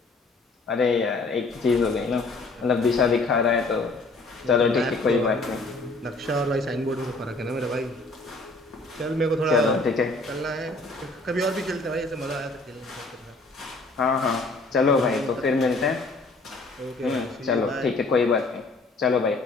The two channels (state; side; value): quieter; right; 3.2 dB